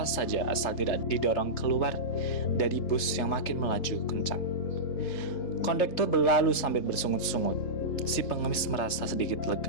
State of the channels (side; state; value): right; late; 3.3 ms